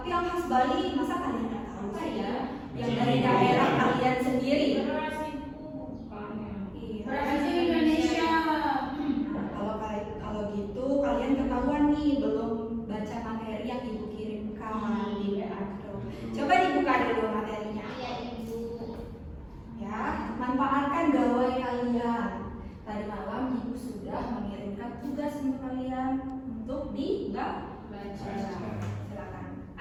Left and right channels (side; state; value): both; identical; correlation 1.00